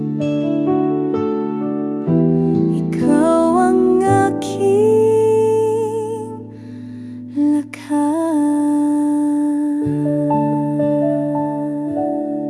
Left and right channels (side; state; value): both; identical; correlation 1.00